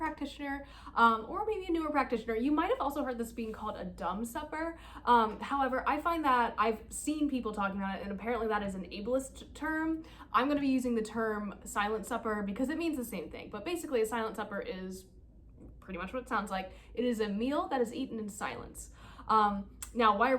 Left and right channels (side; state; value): both; identical; correlation 1.00